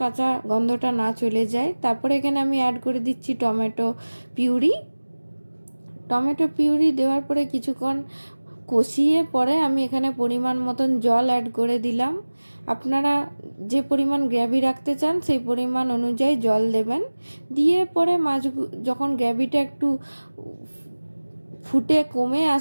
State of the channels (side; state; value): both; inverted; correlation -1.00